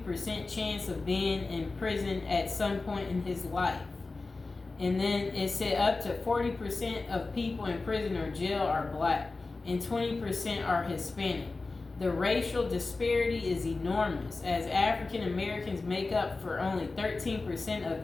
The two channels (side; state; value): right; quieter; 3.6 dB